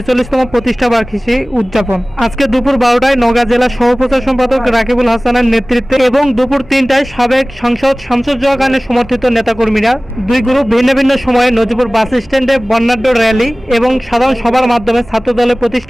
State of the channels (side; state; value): right; noise; hum, 25 dB below the sound